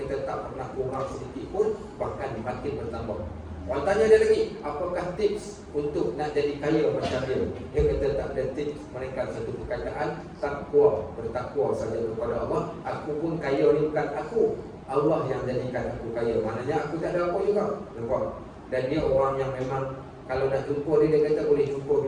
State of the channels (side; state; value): both; identical; correlation 1.00